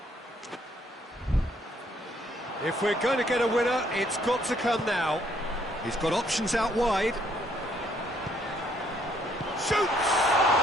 If we're going to get a winner, it's got to come now. He's got options out wide. Shoots!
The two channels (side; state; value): both; normal; correlation 0.68